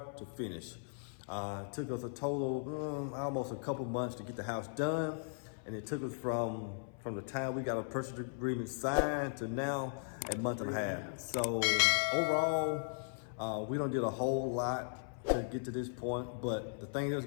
to finish. It took us a total, almost a couple months to get the house done. And it took us from the time we got a purchase agreement signed to now a month and a half. So overall, we don't did a whole lot to get to this point, but the thing is,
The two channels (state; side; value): silent; right; 53 dB below the other